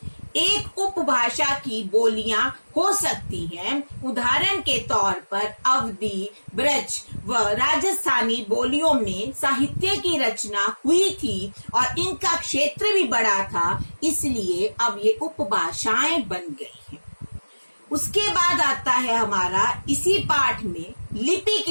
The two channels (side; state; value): both; inverted; correlation -1.00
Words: एक उपभाषा की बोलियां हो सकती हैं, उदाहरण के तौर पर अवधी, ब्रज व राजस्थानी बोलियों में साहित्य की रचना हुई थी और इनका क्षेत्र भी बड़ा था, इसलिए अब ये उपभाषाएं बन गई हैं। उसके बाद आता है हमारा इसी पाठ में लिपि